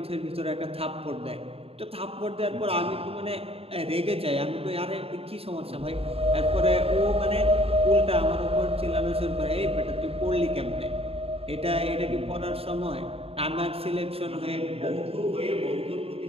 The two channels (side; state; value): left; late; 0.28 ms